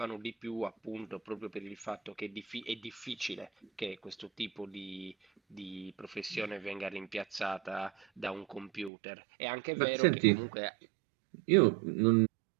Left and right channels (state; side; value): drops out; left; at 8.9 s